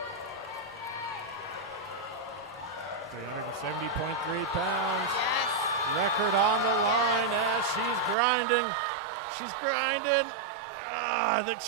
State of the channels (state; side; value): drops out; left; at 8.2 s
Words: $370.3 pounds. Yes. Record on the line as she's grinding. She's grinding.